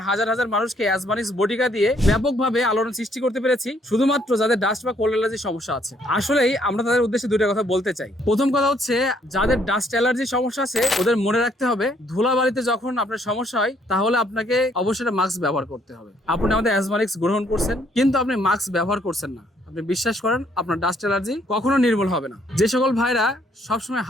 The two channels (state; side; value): normal; both; correlation 0.67